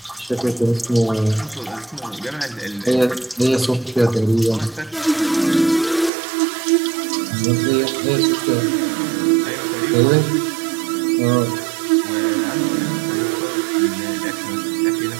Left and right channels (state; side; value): drops out; left; at 6.1 s